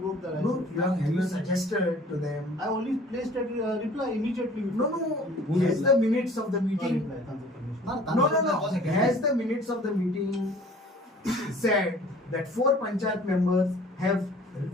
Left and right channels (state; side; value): normal; both; correlation 0.50